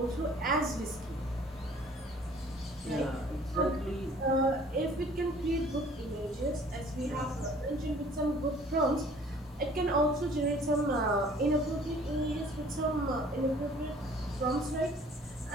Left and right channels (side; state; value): both; normal; correlation 0.53